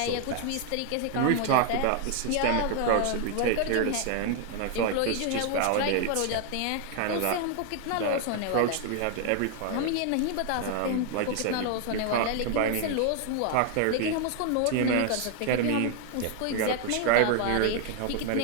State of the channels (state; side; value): different; both; correlation 0.00